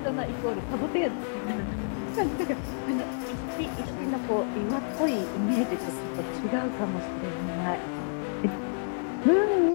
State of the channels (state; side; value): silent; right; digital silence